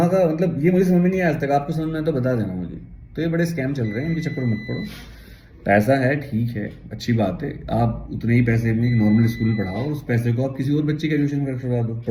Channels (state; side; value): identical; both; correlation 1.00